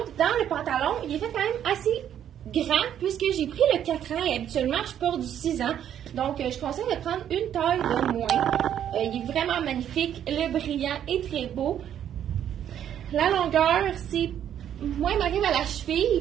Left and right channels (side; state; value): left; quieter; 10.0 dB